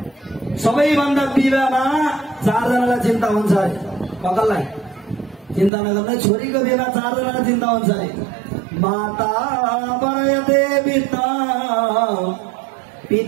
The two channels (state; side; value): drops out; left; at 5.7 s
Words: सबैभन्दा विवाहमा 4 जनालाई चिन्ता हुन्छ अरे। ककललाई चिन्ता नगर्ने, छोरीको विवाह 4 जनालाई चिन्ता हुन्छ अरे। माता वरयते पिता,